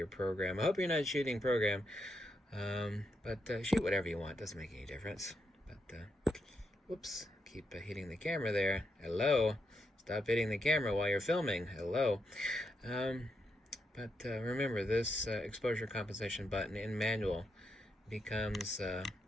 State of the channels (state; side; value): normal; both; correlation 0.81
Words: program. I hope you're not shooting program, but shoot whatever you want. Doesn't make any difference. But whoops, keep hitting the camera there. Hello. Stop hitting the camera while you're filming. Hello. But remember, this exposure compensation button in manual becomes